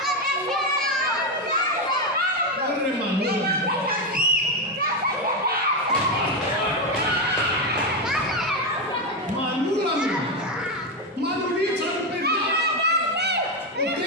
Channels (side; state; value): both; normal; correlation 0.09